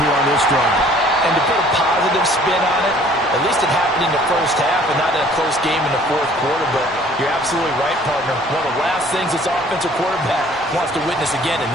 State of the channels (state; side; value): normal; both; correlation 0.55